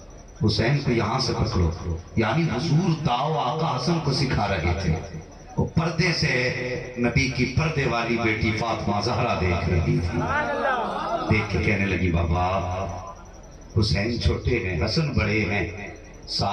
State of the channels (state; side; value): identical; both; correlation 1.00